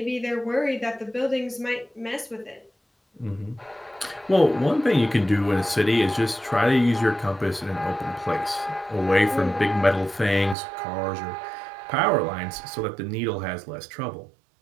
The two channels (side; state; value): left; drops out; at 10.6 s